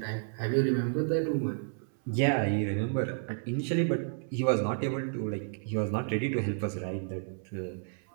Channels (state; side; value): silent; left; 57 dB below the other